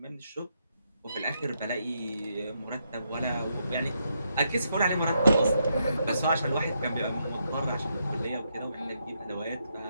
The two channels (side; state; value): both; inverted; correlation -0.79